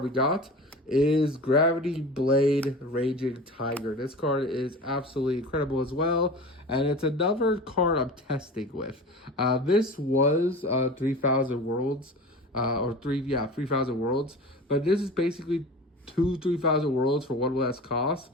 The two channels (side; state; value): both; normal; correlation 0.34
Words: we got is Gravity Blade Raging Tiger. This card is absolutely incredible as well, and it's another card I'm testing with. This was 3,000 Worlds, 3,000 Worlds, but this is basically 3,000 Worlds for one less cost.